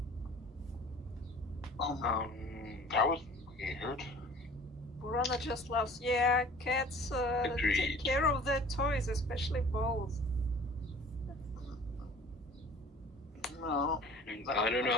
That was weird. Burana just laughs. Yeah, cats take Agreed. care of their toys, especially balls. No. I don't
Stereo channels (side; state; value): both; normal; correlation 0.47